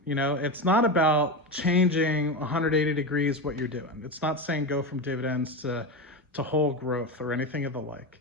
It's not about changing 180 degrees what you're doing. It's not saying go from dividends to whole growth or anything of the like.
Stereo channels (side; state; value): both; normal; correlation 0.18